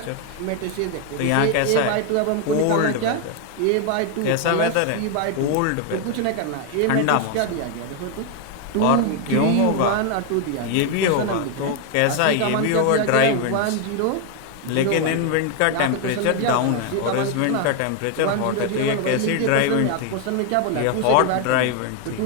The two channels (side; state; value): both; different; correlation 0.01